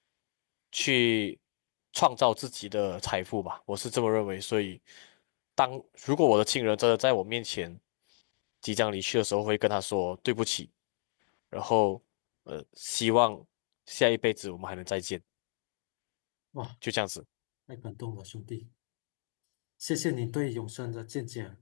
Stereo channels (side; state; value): right; silent; digital silence